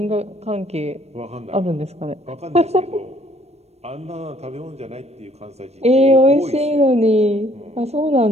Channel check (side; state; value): left; late; 0.31 ms